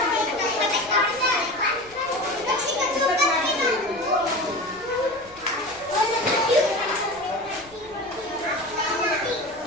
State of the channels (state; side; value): noise; left; rumble, 25 dB below the sound